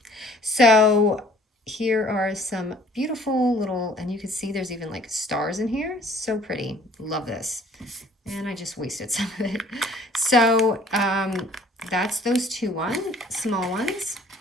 So here are some beautiful little, and you can see there's even like stars in here. So pretty. Love this. And I just wasted some of it. So that's those small ones.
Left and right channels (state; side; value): normal; both; correlation 0.55